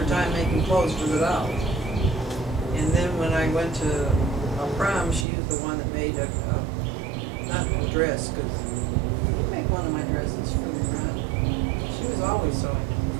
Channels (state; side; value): drops out; left; at 5.2 s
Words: time making clothes for the dolls. And then when I went to a prom, she was the one that made not a dress, because you made one of my dresses for the prom. She was always sewing